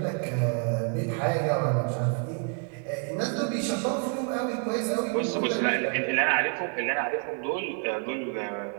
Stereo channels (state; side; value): quieter; left; 39.3 dB